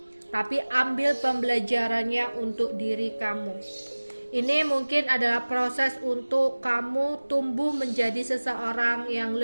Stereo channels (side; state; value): both; inverted; correlation -1.00